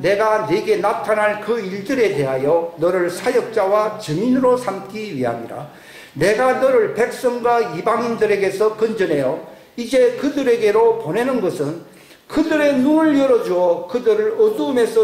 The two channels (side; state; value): both; identical; correlation 1.00